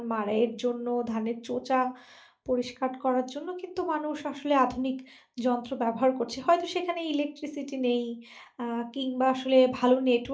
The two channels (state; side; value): identical; both; correlation 1.00